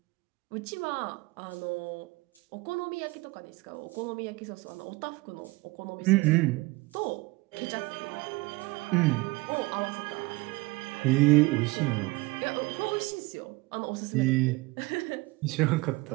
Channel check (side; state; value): left; quieter; 22.8 dB